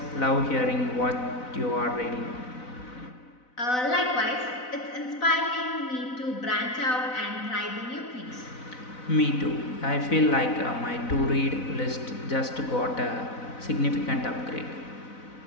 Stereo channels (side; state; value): right; late; 4.0 ms